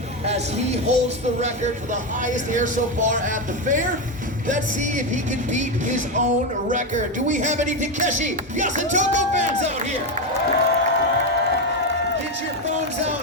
as he holds the record for the highest air so far at the fair. Let's see if he can beat his own record. Do we have any Takeshi Yasutoko fans out here? Get your phones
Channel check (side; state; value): both; normal; correlation 0.10